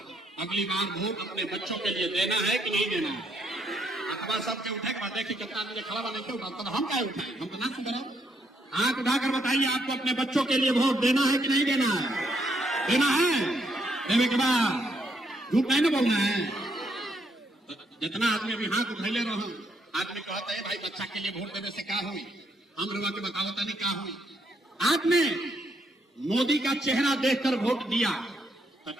अगली बार वोट अपने बच्चों के लिए देना है कि नहीं देना है। अखबार सबके उठे के बाद देखिए कितना आदमी खड़ा बने क्यों उठा, तो हम क्या उठाए, हम तो ना सुधरा। हाथ उठाकर बताइए आपको अपने बच्चों के लिए वोट देना है कि नहीं देना है? देना है। देने के बाद झूठ नहीं ना बोलना है। तो जितना आदमी अभी हाथ उठैले रहो, आदमी कहता है भाई बच्चा के लिए वोट देने से क्या हुई, हम लोग के बताओ नहीं क्या हुई। आपने मोदी का चेहरा देखकर वोट दिया तो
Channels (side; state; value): both; normal; correlation 0.74